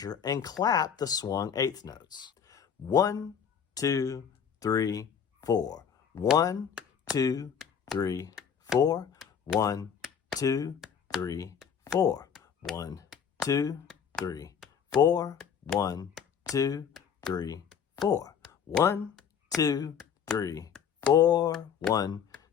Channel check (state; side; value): quieter; right; 7.6 dB